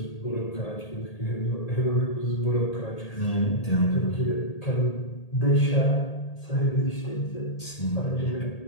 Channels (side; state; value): right; late; 1.8 ms